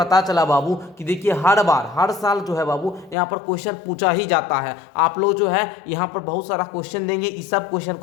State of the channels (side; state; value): right; drops out; at 3.2 s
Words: चला बाबू कि देखिए हर साल जो है बाबू यहाँ पर क्वेश्चन पूछा ही जाता है। आप लोग जो है यहाँ पर बहुत सारा क्वेश्चन देंगे, इस सब क्वेश्चन